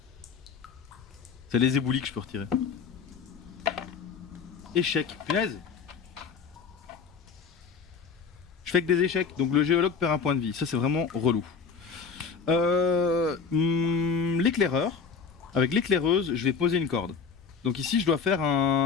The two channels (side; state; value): right; quieter; 5.7 dB